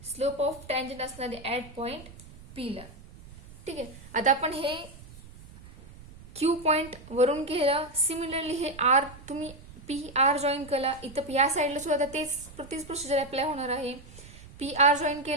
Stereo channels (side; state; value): right; noise; rumble, 18 dB below the sound